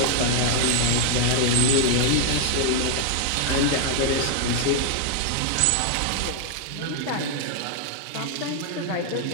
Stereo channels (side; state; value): both; different; correlation 0.00